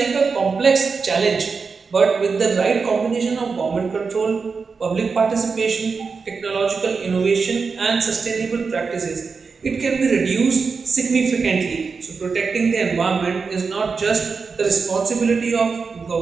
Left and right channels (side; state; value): left; quieter; 5.0 dB